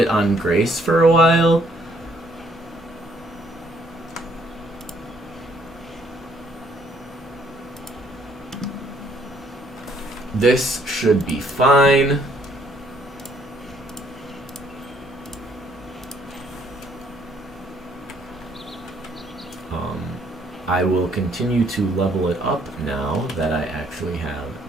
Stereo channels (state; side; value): normal; both; correlation 0.66